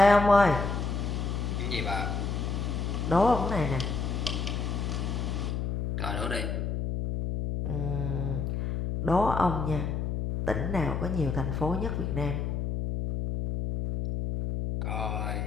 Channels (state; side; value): noise; left; hum, 1 dB below the sound